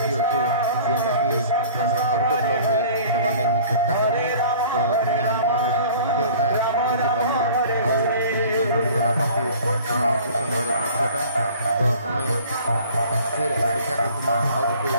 ଅଛେ ଯେନ୍ଟାକି ଆମର ଆଉ ଗୋଟେ ବ୍ଲଗ୍ରେ ଦେବାର୍ ଲାଗି ମୁଇଁ ଚେଷ୍ଟା କର୍ମି ତ ଇନେ ଆମମାନେ ଫେର୍ ଦେଖିପାର୍ମା ଆଉ କିଛି ରହିଗଲା ବାକି ମାଉସୀ ସମୟର ଦୃଶ୍ୟଟା ତ ଆମେ फिर अपेक्षा करतुमा आ गोटे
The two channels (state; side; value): inverted; both; correlation -0.47